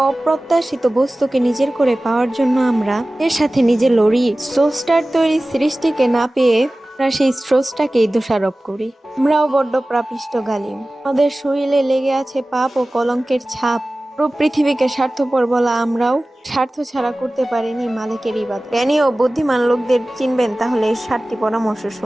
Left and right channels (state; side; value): normal; both; correlation 0.97